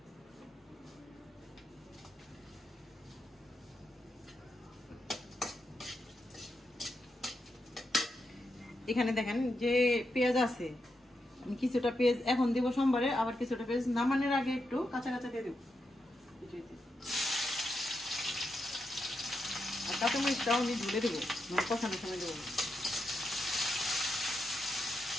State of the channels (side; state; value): both; normal; correlation 0.85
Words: এখানে দেখেন যে পেঁয়াজ আছে, আমি কিছুটা পেঁয়াজ এখন দিব সোমবারে, আবার কিছুটা পেঁয়াজ নামানোর আগে একটু কাঁচা কাঁচা দিয়ে দেবো। আর কাঁচামরিচটাও আমি ঝুলে দেবো, মানে কষানোর সময় দেবো।